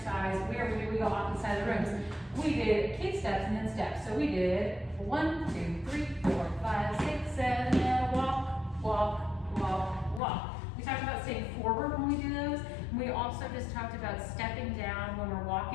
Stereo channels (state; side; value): drops out; right; at 10.2 s